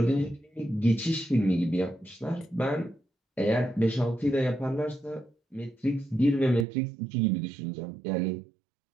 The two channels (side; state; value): left; drops out; at 6.7 s